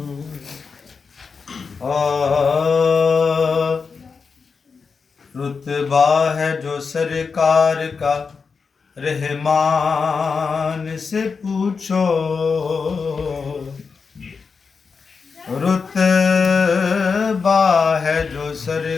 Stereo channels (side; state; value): right; quieter; 5.2 dB